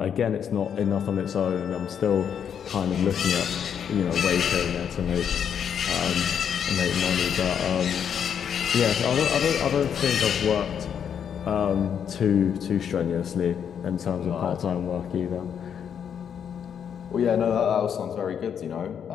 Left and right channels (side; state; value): right; quieter; 8.1 dB